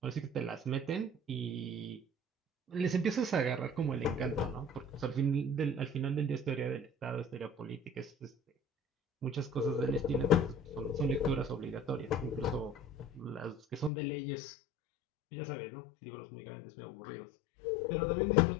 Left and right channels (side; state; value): right; drops out; at 13.9 s